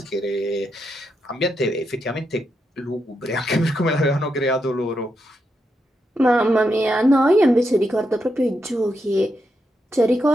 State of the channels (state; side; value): normal; both; correlation 0.83